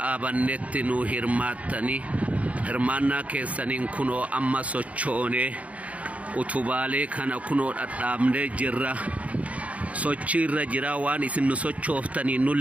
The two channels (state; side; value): late; left; 0.066 ms